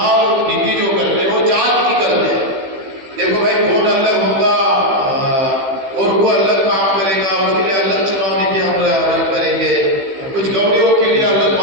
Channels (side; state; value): left; late; 15 ms